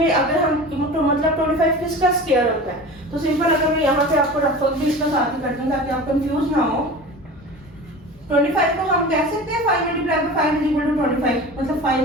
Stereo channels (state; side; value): normal; both; correlation 0.35